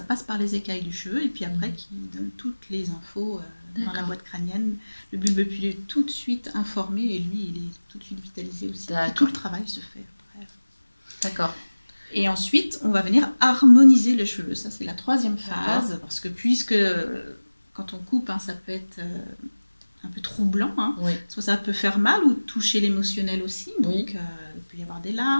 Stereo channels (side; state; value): both; inverted; correlation -1.00